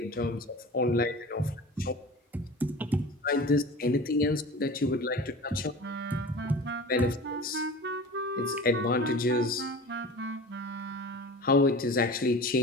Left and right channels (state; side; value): normal; both; correlation 0.36